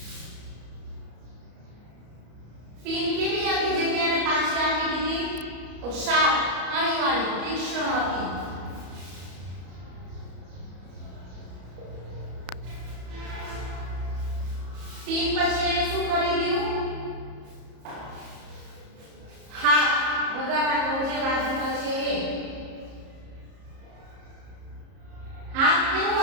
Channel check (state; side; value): late; left; 34 ms